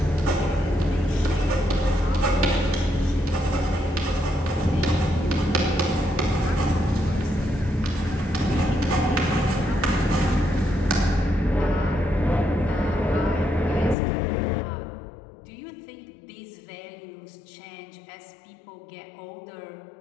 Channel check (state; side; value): drops out; right; at 14.0 s